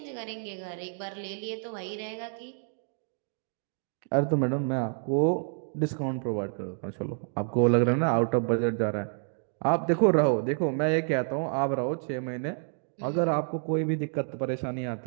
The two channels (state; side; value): silent; left; 59 dB below the other